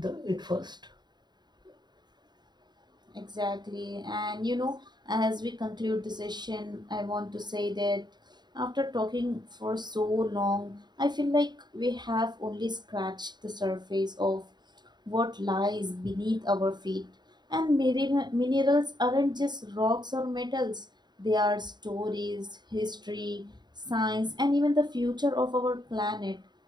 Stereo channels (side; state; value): left; late; 0.21 ms